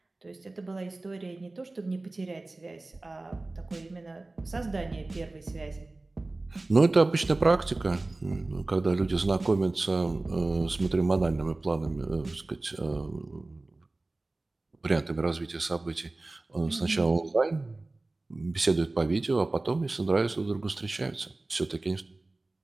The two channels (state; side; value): quieter; left; 3.0 dB